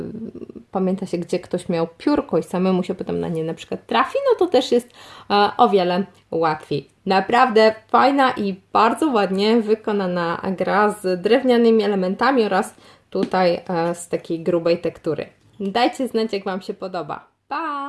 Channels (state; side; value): identical; both; correlation 1.00